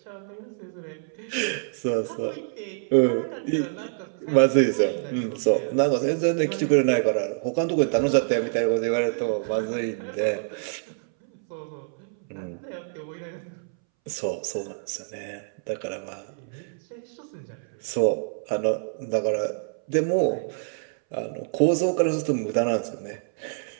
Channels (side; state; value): left; silent; 61 dB below the other